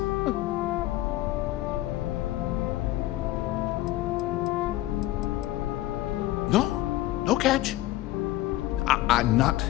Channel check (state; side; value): quieter; right; 15.9 dB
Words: No catch. I'm not